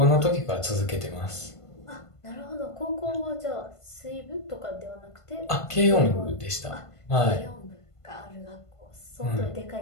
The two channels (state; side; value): late; right; 1.5 ms